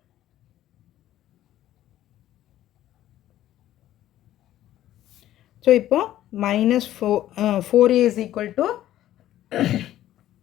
So இப்போ -4a is equal to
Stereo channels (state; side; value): quieter; right; 13.1 dB